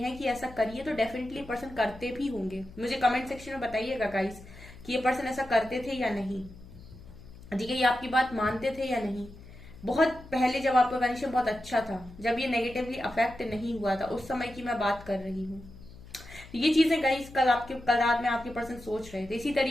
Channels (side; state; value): left; noise; hum, 18 dB below the sound